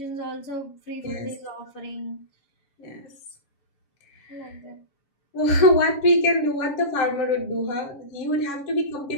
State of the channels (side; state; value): right; late; 7.2 ms